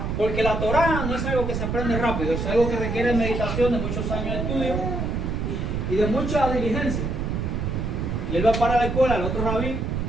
Porque la Torah no es algo que se aprende rápido, es algo que requiere meditación de muchos años de estudio y de mucha diligencia. Y él va para la escuela, el otro rabí,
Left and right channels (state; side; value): noise; right; rumble, 2 dB below the sound